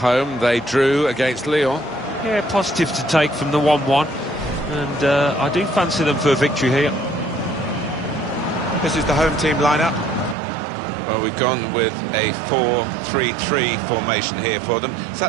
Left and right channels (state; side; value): drops out; left; at 10.4 s